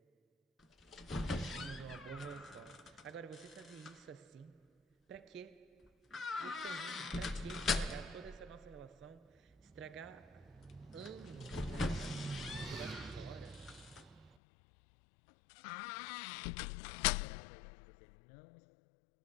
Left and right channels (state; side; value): drops out; right; at 14.4 s